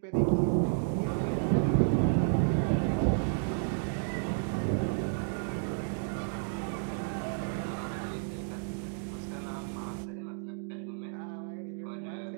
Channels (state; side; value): silent; left; digital silence